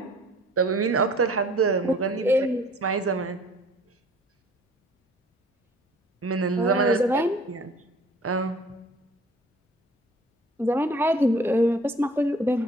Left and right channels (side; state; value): both; normal; correlation 0.51